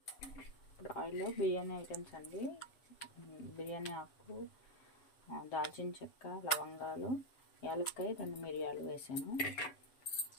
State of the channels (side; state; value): right; late; 7.3 ms